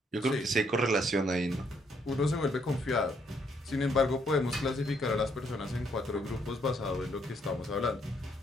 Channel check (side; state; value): both; normal; correlation 0.71